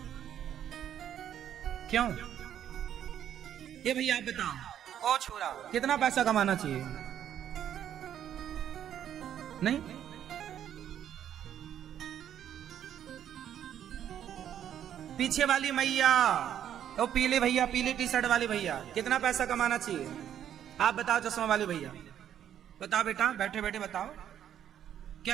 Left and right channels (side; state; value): left; quieter; 10.1 dB